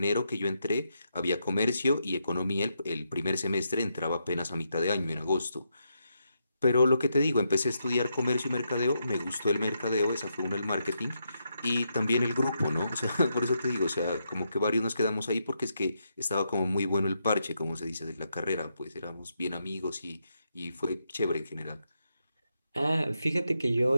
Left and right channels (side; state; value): both; inverted; correlation -0.82